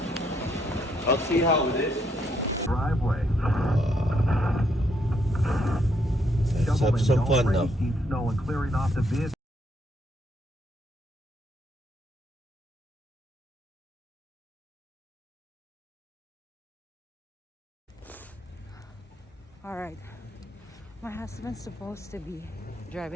I'll see how it is. Driveway. Let's have some fun now. Snow and clearing off the vehicle. All right. My husband's supposed to be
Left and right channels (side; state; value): both; normal; correlation 0.74